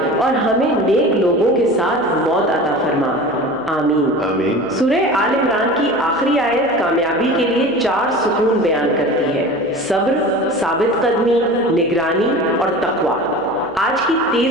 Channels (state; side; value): noise; left; hum, 30 dB below the sound